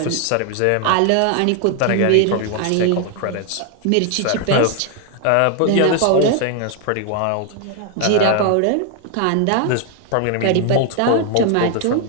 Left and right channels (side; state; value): both; different; correlation 0.00